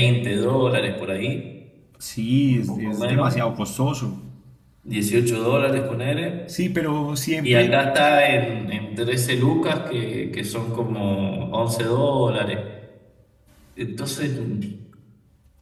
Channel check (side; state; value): both; identical; correlation 1.00